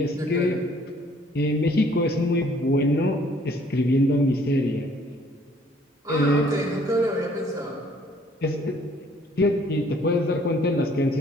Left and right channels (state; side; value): normal; both; correlation 0.60